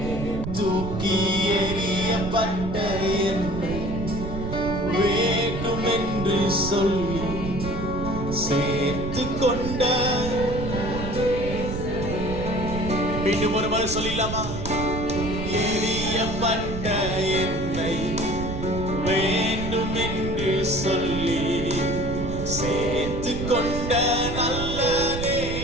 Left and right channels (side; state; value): right; noise; rumble, 5 dB below the sound